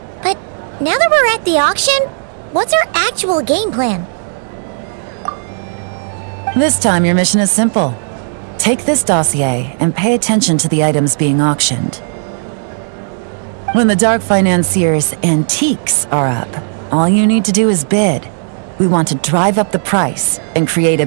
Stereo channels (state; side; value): silent; left; digital silence